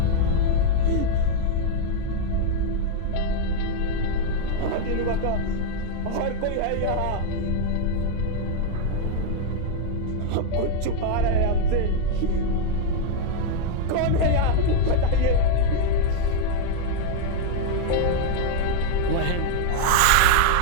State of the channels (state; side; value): different; both; correlation 0.00